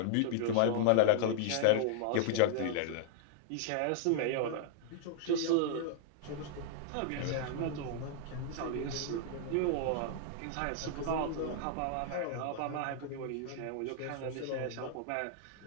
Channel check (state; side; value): different; both; correlation -0.01